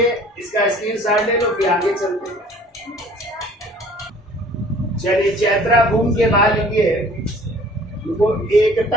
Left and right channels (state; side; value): normal; both; correlation 0.52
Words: इसका स्क्रीनशॉट ले लो, फिर आगे चलते हैं। चलिए चैत्रा भूमि के बाद लिखिए वो